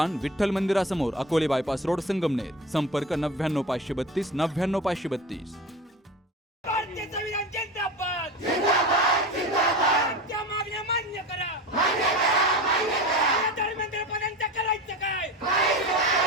विठ्ठल मंदिरासमोर, अकोले बायपास रोड, संगमनेर. संपर्क 99 532 99 532. भारतीय संविधान जिंदाबाद जिंदाबाद जिंदाबाद. त्या मागण्या मान्य करा मान्य करा मान्य करा. धर्मेंद्रपदांचं करायचं काय?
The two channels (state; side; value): normal; both; correlation 0.30